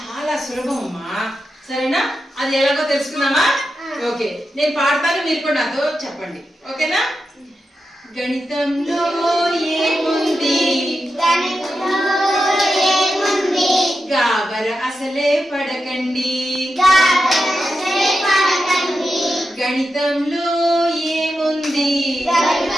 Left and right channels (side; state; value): both; normal; correlation 0.89